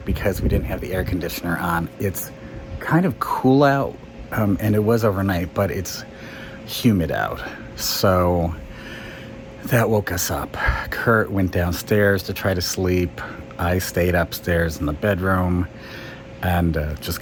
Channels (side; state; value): both; identical; correlation 1.00